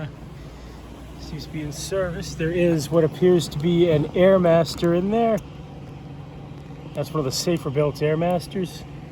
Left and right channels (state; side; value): identical; both; correlation 1.00